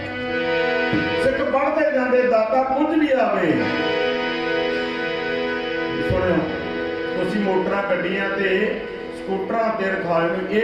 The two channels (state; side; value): identical; both; correlation 1.00